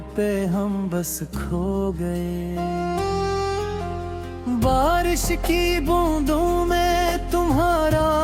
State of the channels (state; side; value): identical; both; correlation 1.00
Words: पे हम बस खो गए। बारिश की बूंदों में तुम्हारा